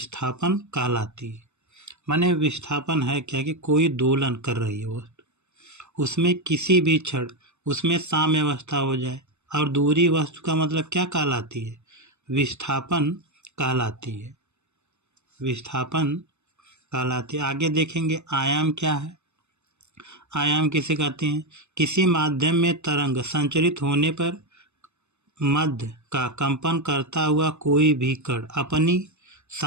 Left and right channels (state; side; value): late; left; 0.82 ms